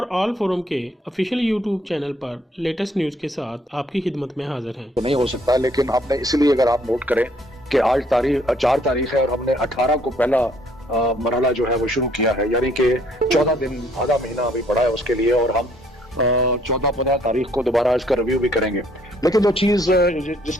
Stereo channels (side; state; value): both; normal; correlation 0.64